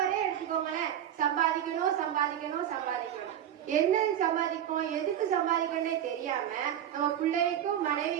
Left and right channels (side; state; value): left; quieter; 10.5 dB